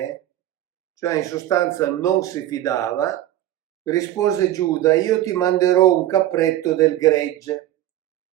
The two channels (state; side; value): quieter; left; 13.4 dB